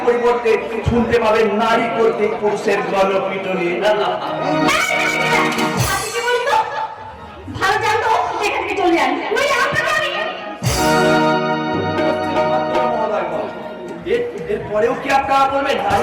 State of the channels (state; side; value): identical; both; correlation 1.00